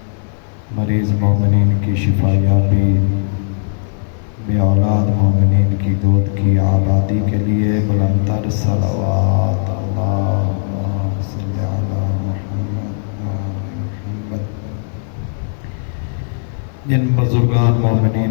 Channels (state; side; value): silent; right; 67 dB below the other